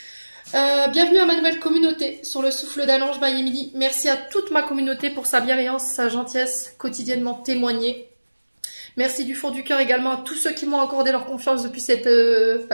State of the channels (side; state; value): both; inverted; correlation -1.00